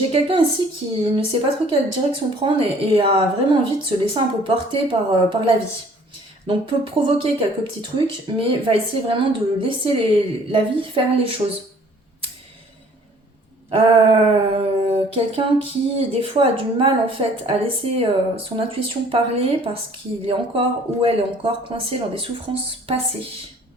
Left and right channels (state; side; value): normal; both; correlation 0.55